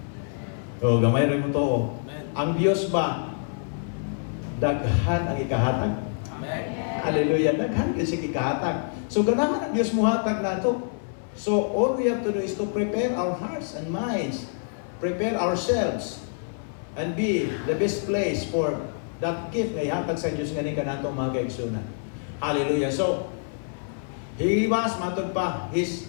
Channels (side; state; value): right; silent; 61 dB below the other